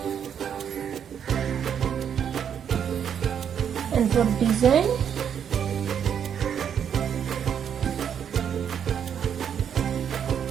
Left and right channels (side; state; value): left; quieter; 8.3 dB